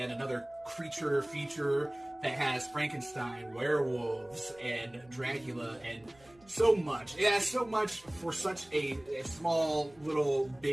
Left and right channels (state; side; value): noise; right; hum, 28 dB below the sound